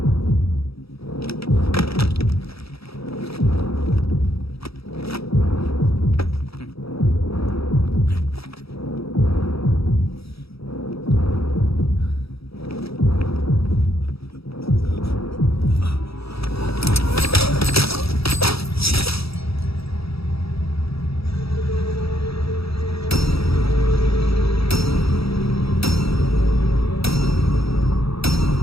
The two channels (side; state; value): right; late; 0.77 ms